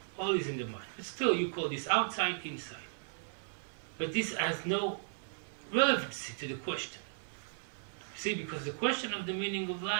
All is in the mind. But still you call this outside, inside. But this has no relevancy to the question. See, because the question of the meaning of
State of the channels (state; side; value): silent; left; digital silence